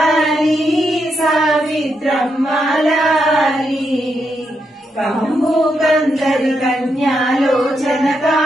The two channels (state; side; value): normal; both; correlation 0.82